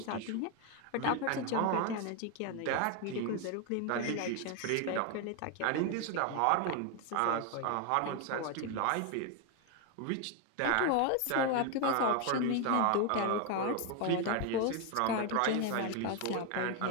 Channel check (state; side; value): different; both; correlation 0.01